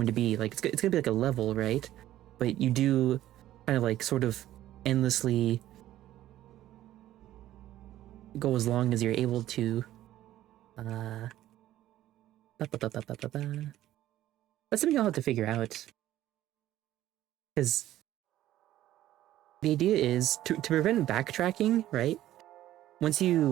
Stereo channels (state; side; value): quieter; left; 13.7 dB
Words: to be. Like, it's gonna be like a level, right? But you do kind of like sort of endlessly go as long as you're able to. That's something I'll have to figure out. Because the idea is to prevent backtracking, right? Once